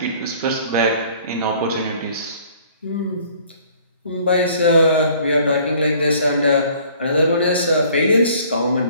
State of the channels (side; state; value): both; inverted; correlation -0.55